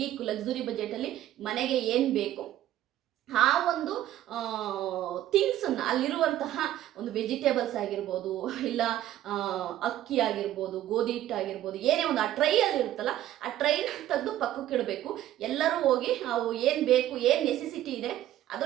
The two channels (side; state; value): left; quieter; 13.0 dB